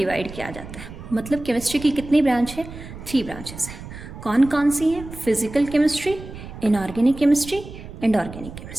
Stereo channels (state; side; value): noise; right; rumble, 13 dB below the sound